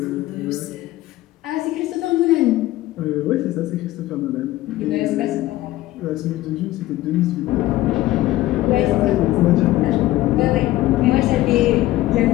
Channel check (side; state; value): right; quieter; 16.1 dB